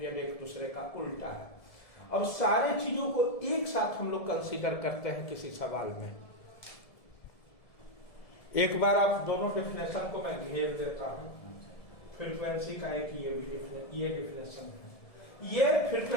एक दूसरे का उल्टा है। अब सारे चीजों को एक साथ हम लोग कंसीडर करते हैं किसी सवाल में। एक बार आप दोनों डेफिनेशन को मैं घेर देता हूं। फ्रीक्वेंसी का एक ये डेफिनेशन है। ये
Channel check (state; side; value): late; right; 1.7 ms